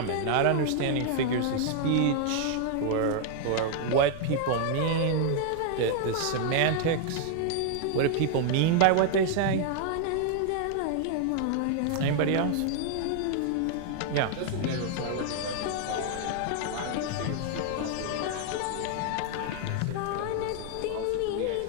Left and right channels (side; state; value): both; different; correlation 0.00